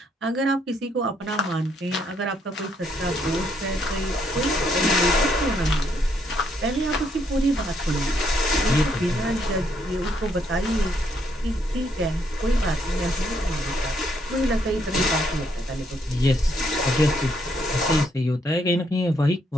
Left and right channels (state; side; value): normal; both; correlation 0.72